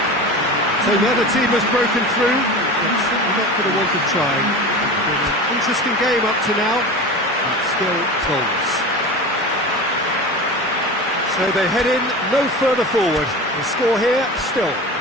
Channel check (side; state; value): both; normal; correlation 0.31